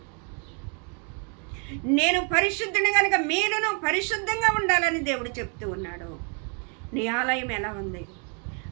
నేను పరిశుద్ధుని కనుక మీరును పరిశుద్ధంగా ఉండాలని దేవుడు చెప్తూ ఉన్నాడు. నీ ఆలయం ఎలా ఉంది?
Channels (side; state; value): left; quieter; 39.2 dB